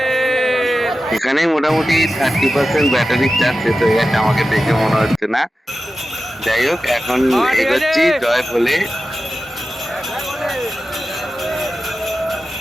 এখানে মোটামুটি 30% ব্যাটারির চার্জ শেষ হয়ে গেছে, আমাকে দেখে মনে হচ্ছে না। যাই হোক, এখন এগোচ্ছি। জয় বলে।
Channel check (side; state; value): both; normal; correlation 0.93